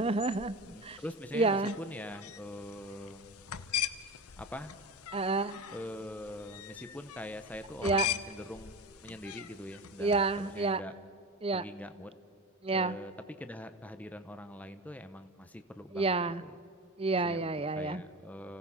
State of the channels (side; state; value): both; normal; correlation 0.27